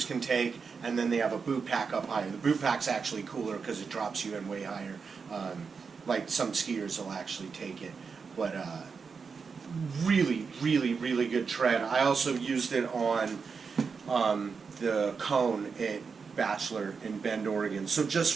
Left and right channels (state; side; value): quieter; left; 5.4 dB